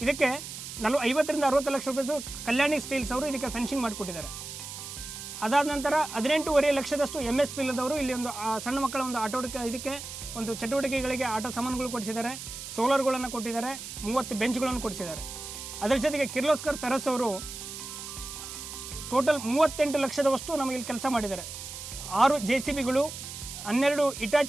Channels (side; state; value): right; noise; hiss, 10 dB below the sound